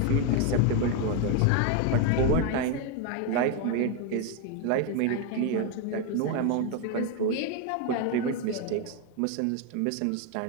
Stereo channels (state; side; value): different; both; correlation 0.01